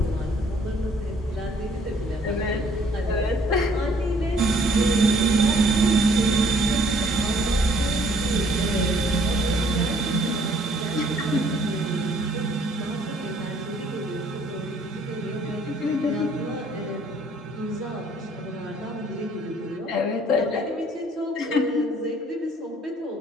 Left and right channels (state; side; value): normal; both; correlation 0.60